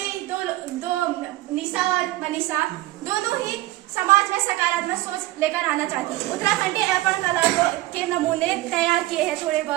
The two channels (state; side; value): quieter; left; 17.5 dB